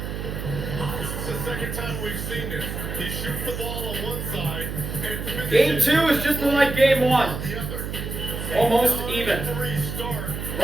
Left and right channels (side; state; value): right; noise; hum, 5 dB below the sound